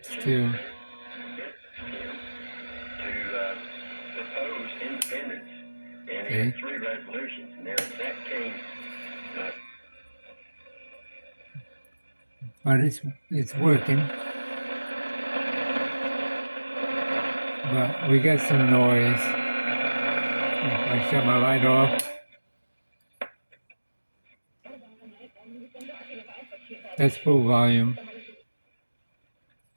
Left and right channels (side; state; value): both; inverted; correlation -1.00